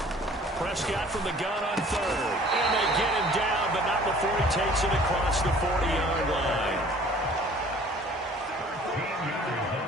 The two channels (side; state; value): both; normal; correlation 0.51